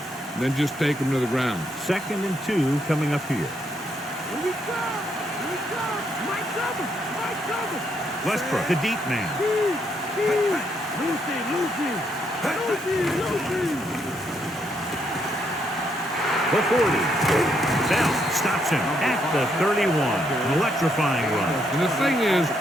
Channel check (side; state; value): both; normal; correlation 0.75